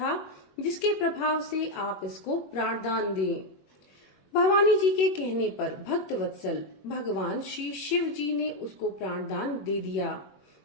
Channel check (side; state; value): right; late; 21 ms